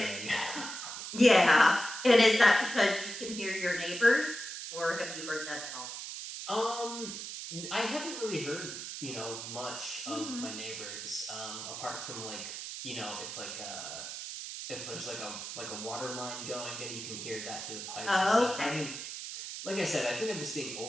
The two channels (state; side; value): noise; right; hiss, 7 dB below the sound